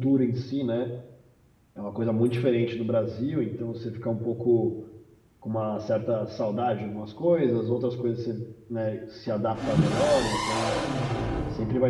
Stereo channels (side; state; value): both; identical; correlation 1.00